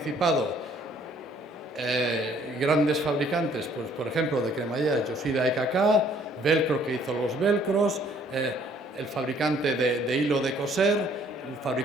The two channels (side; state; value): both; normal; correlation 0.61